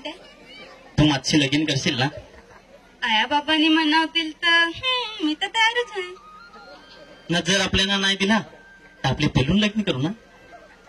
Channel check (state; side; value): identical; both; correlation 1.00